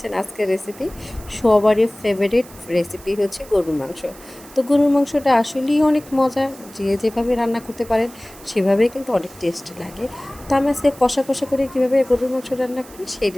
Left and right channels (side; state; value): right; noise; hiss, 21 dB below the sound